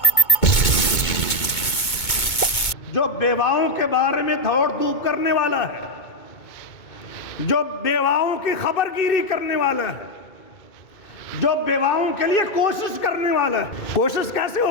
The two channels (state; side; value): late; right; 2.2 ms